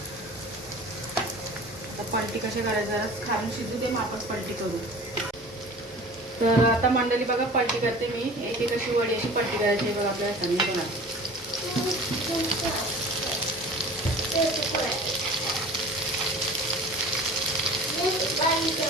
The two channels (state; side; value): normal; both; correlation 0.41